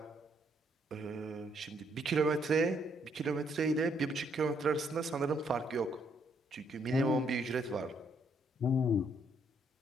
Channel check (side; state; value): both; normal; correlation 0.71